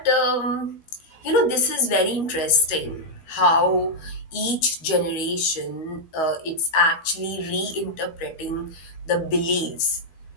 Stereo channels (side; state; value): right; late; 13 ms